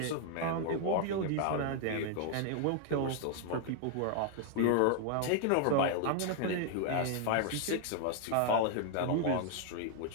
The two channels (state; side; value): different; both; correlation 0.00